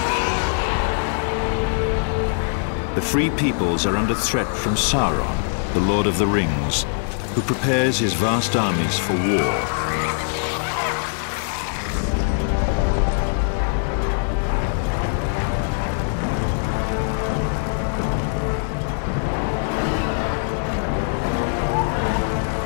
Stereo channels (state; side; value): silent; right; digital silence